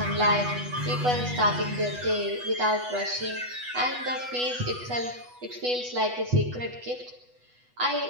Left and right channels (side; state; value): left; late; 8.1 ms